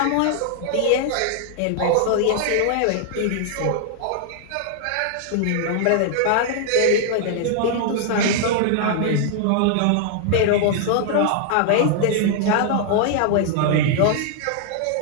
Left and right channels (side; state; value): both; different; correlation -0.01